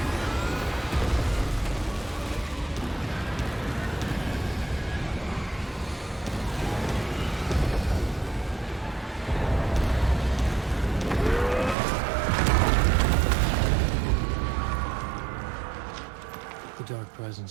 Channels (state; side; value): drops out; left; at 11.8 s